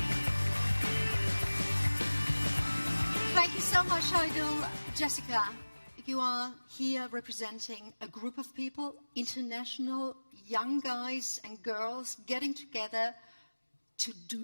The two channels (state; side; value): inverted; both; correlation -1.00